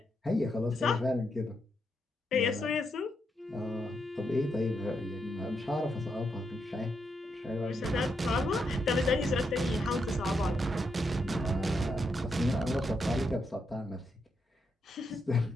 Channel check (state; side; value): normal; both; correlation 0.81